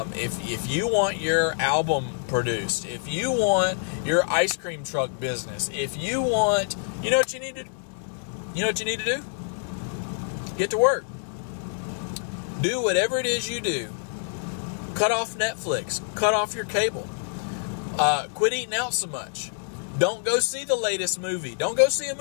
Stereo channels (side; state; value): right; silent; digital silence